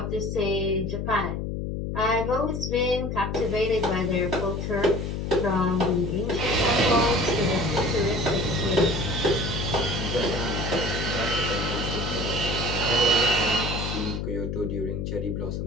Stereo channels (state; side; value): noise; left; hum, 3 dB below the sound